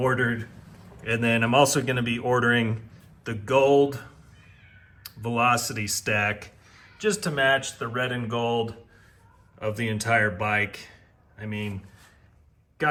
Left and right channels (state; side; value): identical; both; correlation 1.00